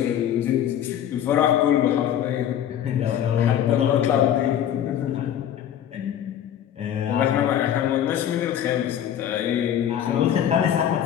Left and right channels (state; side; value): quieter; right; 10.2 dB